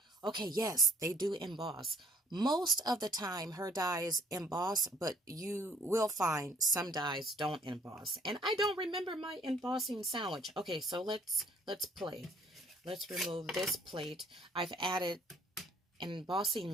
Okay, yes, they do emboss. Most of the time, her dies emboss, but you will find some dies don't emboss. And I don't remember my embossing sandwich. Okay, so let's play. Let's remove this plate. I've added an embossing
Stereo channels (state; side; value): normal; both; correlation 0.61